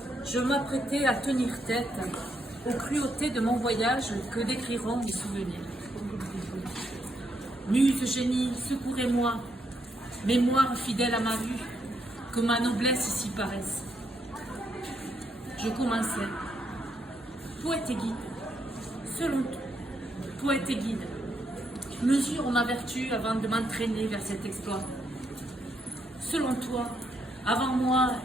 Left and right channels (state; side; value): normal; both; correlation 0.77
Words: je m'apprêtais à tenir tête aux cruautés de mon voyage que décriront mes souvenirs. Muse génie, secourez-moi, mémoire fidèle à ma vue, que ma noblesse ici paraisse. Je commençais. Poète et guide, selon toi, poète et guide, mesure ma vertu avant de m'entraîner vers cet exploit. Selon toi, avant moi,